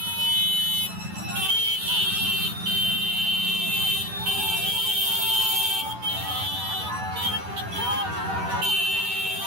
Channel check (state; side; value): late; left; 10 ms